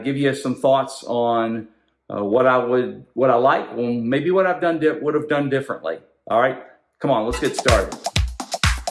give you some thoughts on what I like, and maybe what would have done differently. All right, come on, let's get started.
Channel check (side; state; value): both; identical; correlation 1.00